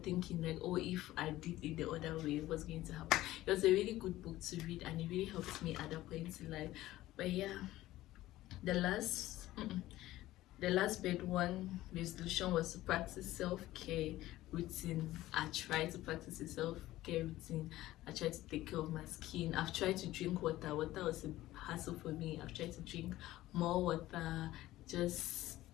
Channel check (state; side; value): quieter; right; 15.9 dB